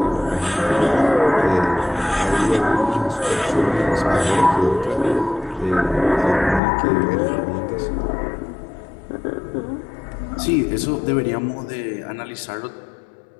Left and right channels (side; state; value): right; drops out; at 6.6 s